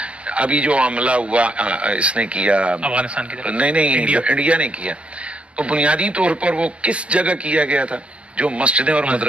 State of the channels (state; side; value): late; left; 0.060 ms